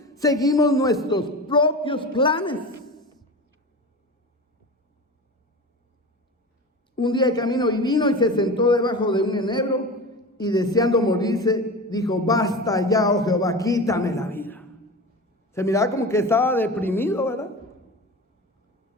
seguimos nuestros propios planes. Un día de camino y vino y se sentó debajo de un enebro y deseando morirse, dijo: basta ya, oh Jehová, quítame la vida. Se miraba como que estaba deprimido, ¿verdad?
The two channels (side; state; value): both; normal; correlation 0.30